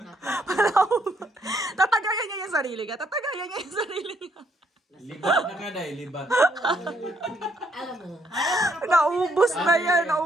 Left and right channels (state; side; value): normal; both; correlation 0.71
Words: Palahubog. Tatagayan niya yung sarili niya. Tatagayan niya yung sarili niya. Libat na ka dahil, libat. Alam mo. Naubos na yan.